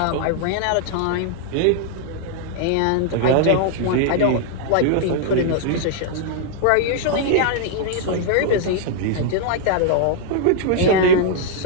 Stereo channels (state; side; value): different; both; correlation -0.01